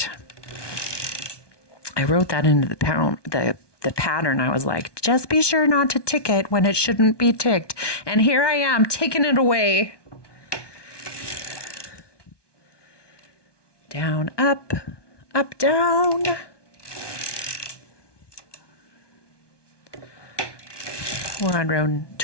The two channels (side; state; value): right; late; 1.2 ms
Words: I wrote that into the pattern. I was like, just be sure not to tick it when it shouldn't be ticked. And here I am, ticking it away. Down, up, down. We're on row